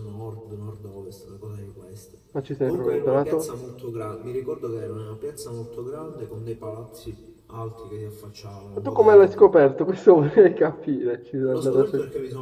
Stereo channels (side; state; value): both; identical; correlation 1.00